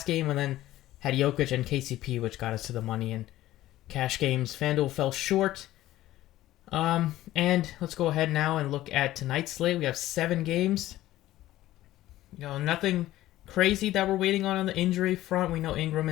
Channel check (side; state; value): right; quieter; 15.1 dB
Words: game, and then had Jokic and KCP, which got us to the money in cash games. FanDuel fell short. And let's go ahead now and look at tonight's slate. We have 7 games. Nothing crazy that we're waiting on the injury front. We know Ingram